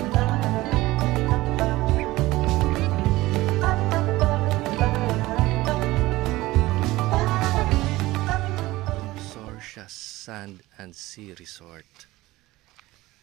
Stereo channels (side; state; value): left; quieter; 18.5 dB